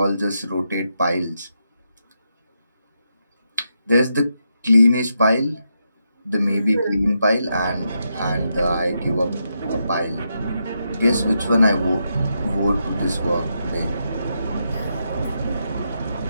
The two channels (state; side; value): inverted; both; correlation -0.83